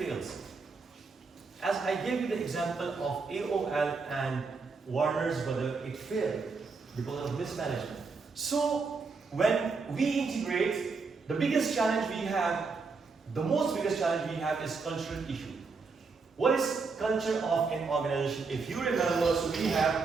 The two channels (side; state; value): left; quieter; 4.6 dB